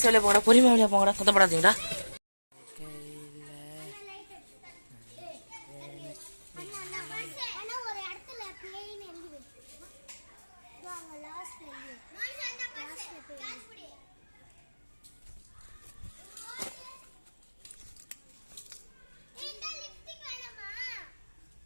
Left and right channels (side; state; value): both; inverted; correlation -1.00